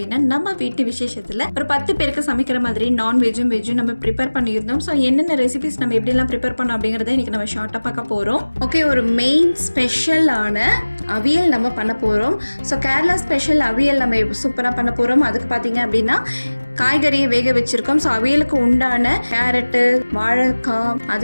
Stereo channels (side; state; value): both; inverted; correlation -1.00